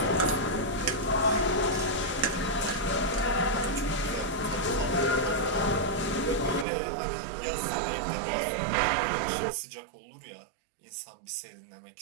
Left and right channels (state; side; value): drops out; left; at 6.7 s